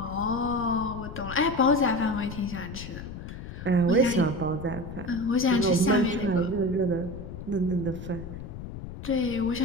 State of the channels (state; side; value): noise; left; rumble, 10 dB below the sound